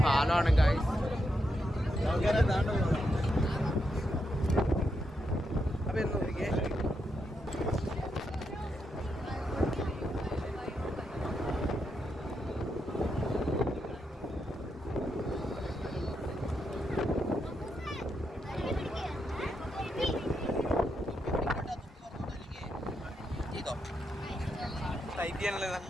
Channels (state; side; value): normal; both; correlation 0.83